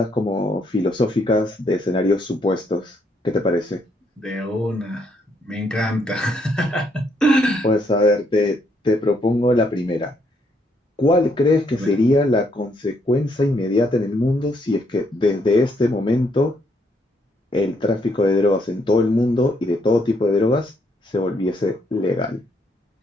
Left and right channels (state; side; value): normal; both; correlation 0.72